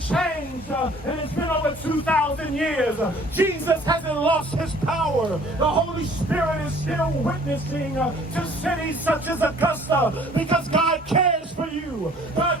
changed, and it's been over 2,000 years. Jesus hasn't lost his power. The Holy Spirit is still witnessing to cities such as Augusta, because God cares for you.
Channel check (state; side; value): normal; both; correlation 0.54